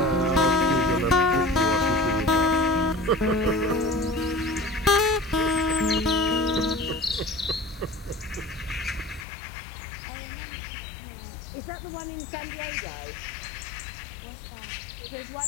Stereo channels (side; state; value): right; drops out; at 9.2 s